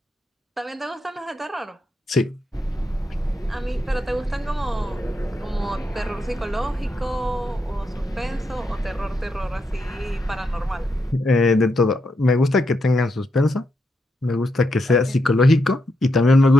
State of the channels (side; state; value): both; normal; correlation 0.82